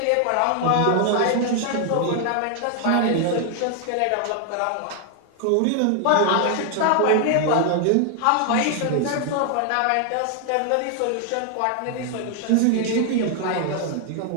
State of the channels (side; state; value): both; different; correlation 0.00